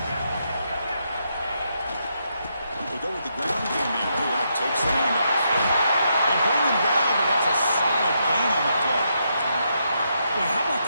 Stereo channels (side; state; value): both; inverted; correlation -0.80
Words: Go with the ground game here. That takes the handoff. They bring him down, but that's a solid gain on the play. Boy, how about